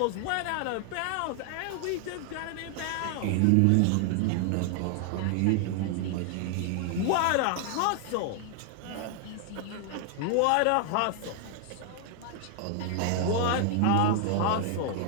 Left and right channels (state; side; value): different; both; correlation 0.00